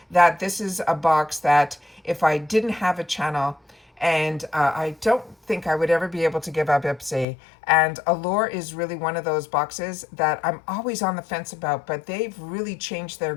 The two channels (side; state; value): right; drops out; at 7.2 s